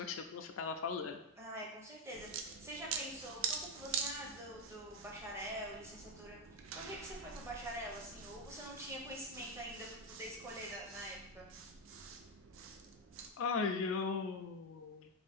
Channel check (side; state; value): both; normal; correlation 0.06